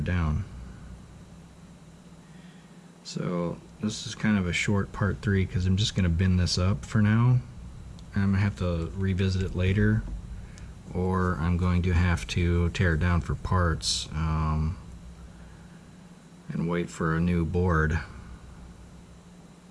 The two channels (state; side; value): identical; both; correlation 1.00